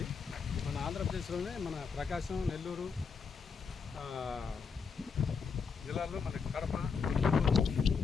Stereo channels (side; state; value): right; quieter; 5.7 dB